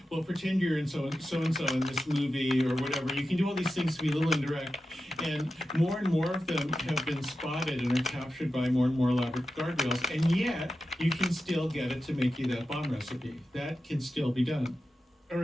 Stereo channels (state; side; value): normal; both; correlation 0.92